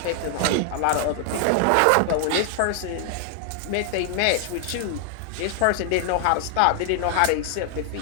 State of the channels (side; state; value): both; different; correlation 0.00